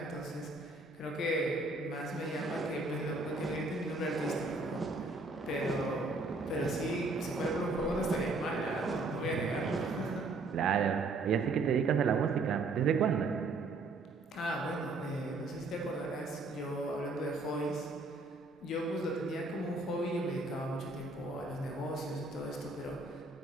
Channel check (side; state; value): left; quieter; 3.3 dB